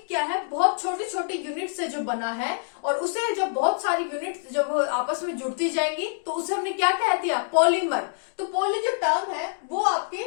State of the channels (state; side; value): silent; right; digital silence